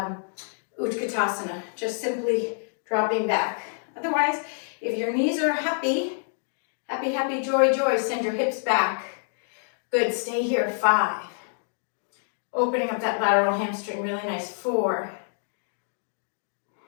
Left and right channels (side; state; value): right; silent; digital silence